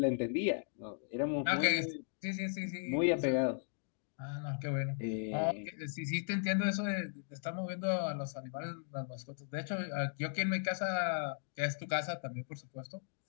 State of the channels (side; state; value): right; silent; digital silence